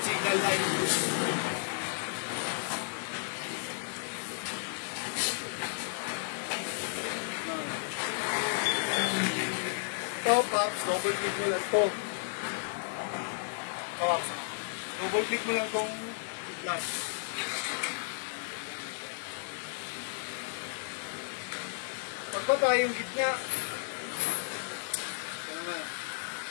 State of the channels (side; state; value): right; silent; digital silence